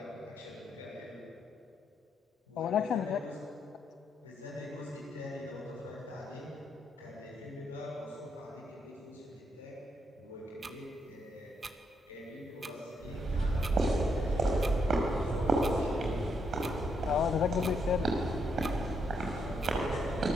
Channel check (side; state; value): both; normal; correlation 0.77